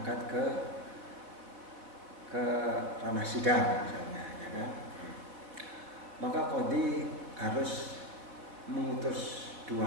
ke ranah sidang misalnya, ya kan? Maka qadhi harus mengutus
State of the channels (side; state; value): left; late; 4.3 ms